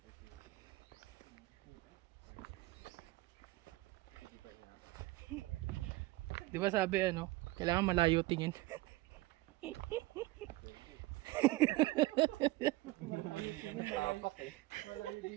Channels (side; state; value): left; quieter; 19.7 dB